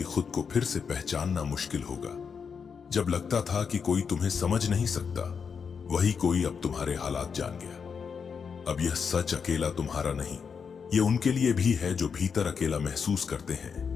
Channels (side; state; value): right; quieter; 6.2 dB